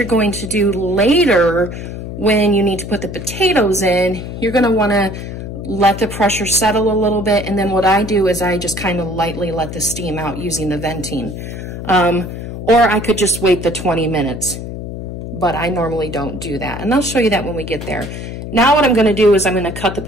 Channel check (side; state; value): left; noise; hum, 8 dB below the sound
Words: going to do later, when you need to put the potatoes in, you're going to want to let the pressure settle a little bit, and then what I do is I just kind of lightly let the steam out using the venting. Or I could just wait the 20 minutes. But I normally don't do that. And I'll show you that when we get there. Now what I'm going to do is I'm going to cut the